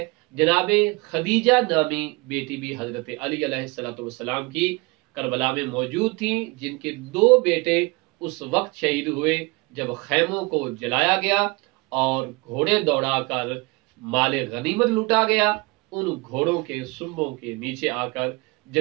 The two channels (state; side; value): quieter; left; 26.1 dB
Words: جناب خدیجہ نامی بیٹی بھی حضرت علی علیہ السلام کی کربلا میں موجود تھیں، جن کے 2 بیٹے اس وقت شہید ہوئے جب خیموں کو جلایا گیا اور گھوڑے دوڑا کر مال غنیمت لوٹا گیا۔ ان گھوڑوں کے سنبوں کے نیچے آ کر